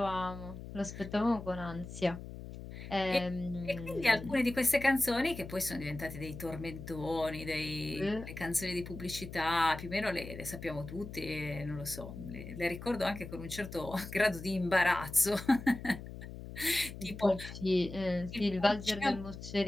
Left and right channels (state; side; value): noise; left; hum, 11 dB below the sound